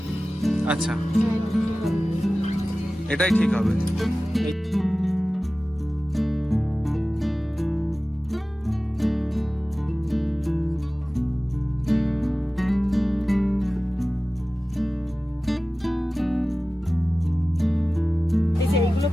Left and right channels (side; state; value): both; normal; correlation 0.96